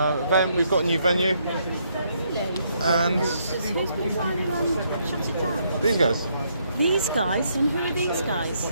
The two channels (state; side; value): inverted; both; correlation -0.73